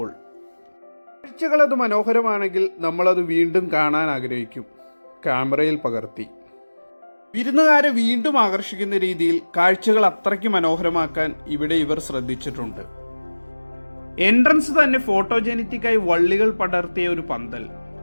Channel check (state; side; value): inverted; both; correlation -1.00